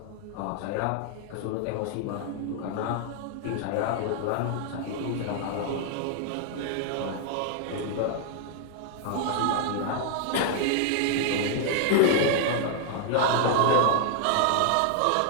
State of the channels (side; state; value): both; different; correlation 0.00